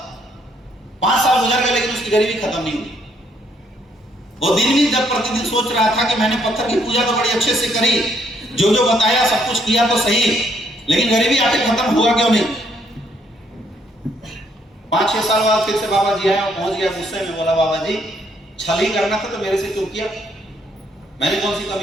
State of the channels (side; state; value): both; normal; correlation 0.70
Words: 5 साल गुजर गए लेकिन उसकी गरीबी खत्म नहीं हुई। वो दिन भी जब प्रतिदिन सोच रहा था कि मैंने पत्थर की पूजा तो बड़ी अच्छे से करी, जो जो बताया सब कुछ किया तो सही, लेकिन गरीबी आके खत्म हुआ क्यों नहीं? 5-6 साल बाद फिर से बाबा जी आए और पहुंच गया गुस्से में। बोला बाबा जी छल ही करना था तो मेरे से क्यों किया? मैंने कौन सी